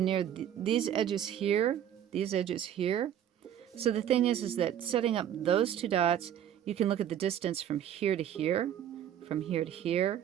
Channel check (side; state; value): left; quieter; 10.2 dB